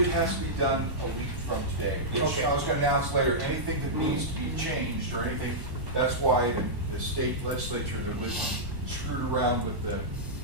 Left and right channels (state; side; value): late; left; 1.1 ms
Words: it has to be done a week from today. Which Okay. I was gonna announce later, anything that needs to be changed or anything, that's why the state legislature that was screwed around with the